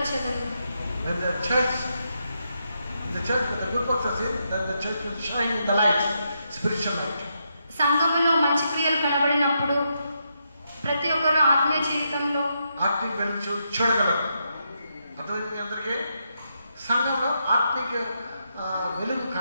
When the church with the good works are seen, then the church will shine in the light, spiritual light. సంఘములో మంచి క్రియలు కనబడినప్పుడు ప్రతి ఒక్కరు ఆత్మీయ జీవితంలో ఆత్మీయ వెలుగు చూడగలరు. అర్థమైంది మీ అందరికీ? సంఘంలో ఆత్మీయ వెలుగు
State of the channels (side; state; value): both; inverted; correlation -0.82